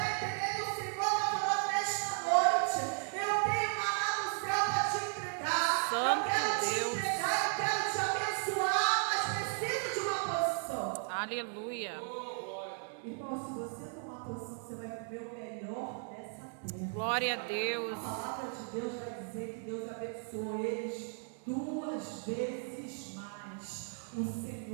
entendendo? O Senhor está falando nesta noite: eu tenho maná do céu para te entregar. Santo eu quero Deus. te entregar, eu quero te abençoar, mas preciso de uma posição. Aleluia. Irmão, se você tomar posição, você vai viver o melhor dessa terra. Glória a Deus. A palavra de Deus vai dizer que Deus abençoou eles 2 vezes mais. O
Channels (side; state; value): left; silent; 54 dB below the other